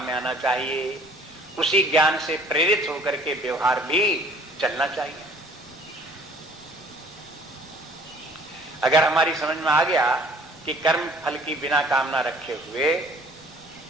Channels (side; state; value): both; normal; correlation 0.55